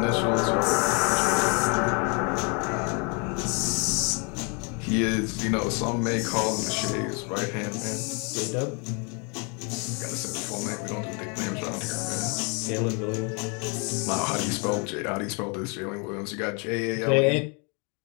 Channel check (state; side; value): quieter; right; 34.4 dB